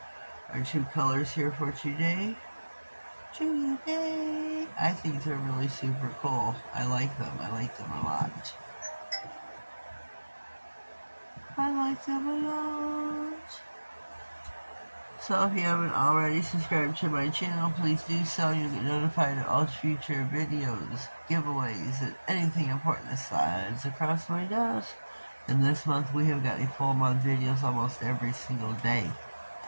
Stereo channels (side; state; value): both; inverted; correlation -1.00